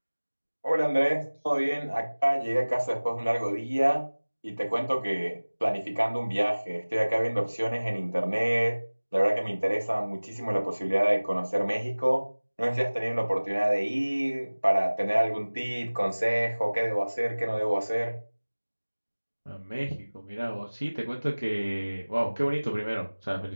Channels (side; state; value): both; inverted; correlation -1.00